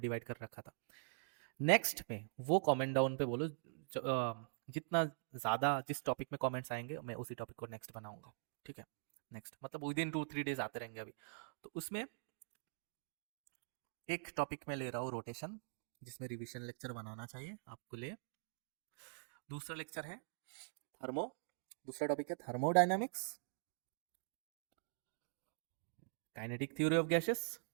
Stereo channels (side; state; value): left; silent; digital silence